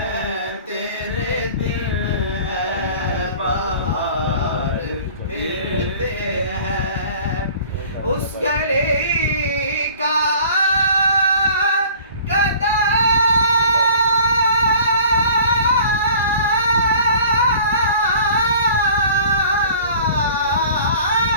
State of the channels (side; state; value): both; inverted; correlation -0.47